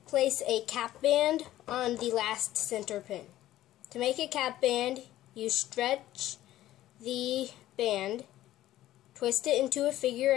place a cap band on the last center pin. To make a cap band, you stretch the band, twist it into a figure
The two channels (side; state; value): right; quieter; 14.2 dB